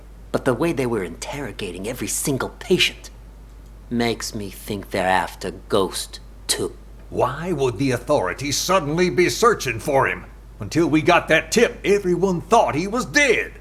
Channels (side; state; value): both; identical; correlation 1.00